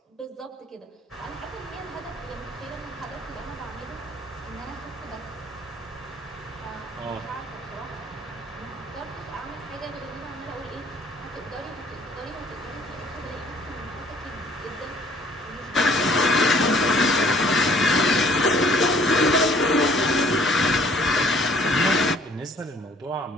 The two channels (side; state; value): both; normal; correlation 0.58